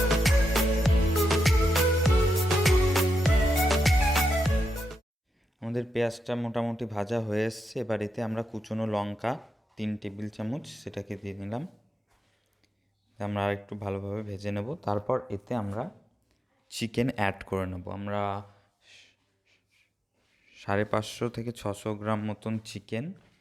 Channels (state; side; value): normal; both; correlation 0.85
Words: আমাদের পেঁয়াজটা মোটামুটি ভাজা হয়ে এসছে। এবার এতে আমরা কুচনো লঙ্কা 3 টেবিল চামচ সেটাকে দিয়ে নিলাম। আমরা আর একটু ভালোভাবে ভেজে নেব। তারপর এতে আমরা চিকেন অ্যাড করে নেব। আমরা 550 থেকে 600 গ্রাম মতন চিকেন